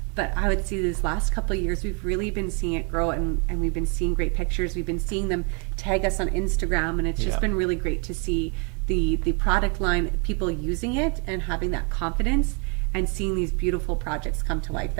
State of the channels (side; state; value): left; quieter; 32.6 dB